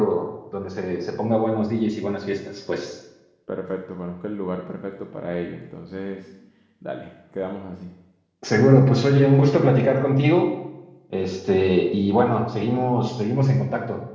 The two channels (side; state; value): both; identical; correlation 1.00